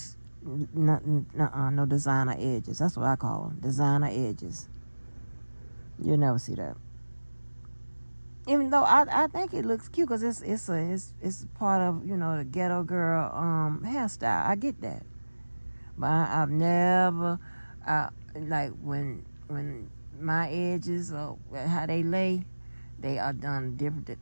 no designer edges. That's what I call them, designer edges. You'll never see that. Even though I think it looks cute, because it's part of the ghetto girl hairstyle. I get that, but I've never like when my edges or how they lay, they are done different.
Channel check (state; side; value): inverted; both; correlation -1.00